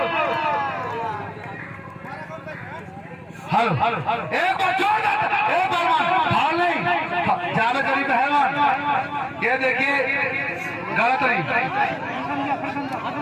हलो एक बार छोड़ एक पहलवान फाल नहीं जावेद गनी पहलवान ये देखिए गलत नहीं।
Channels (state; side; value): identical; both; correlation 1.00